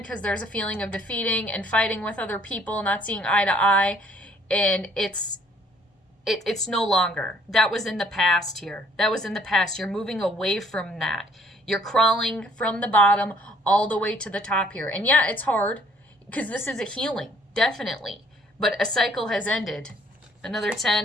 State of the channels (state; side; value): normal; both; correlation 0.61